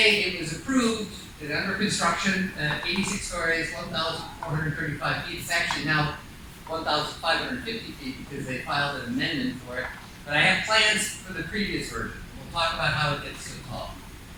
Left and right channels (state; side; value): identical; both; correlation 1.00